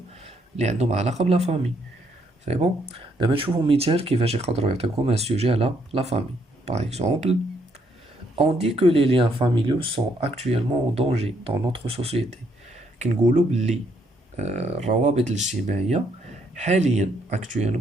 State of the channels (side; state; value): both; normal; correlation 0.72